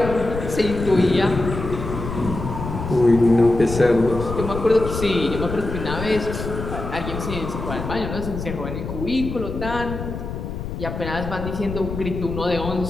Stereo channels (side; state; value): left; noise; rumble, 6 dB below the sound